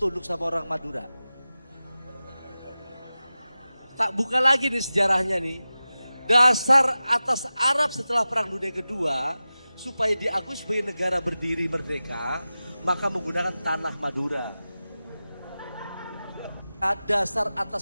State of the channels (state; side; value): inverted; both; correlation -0.95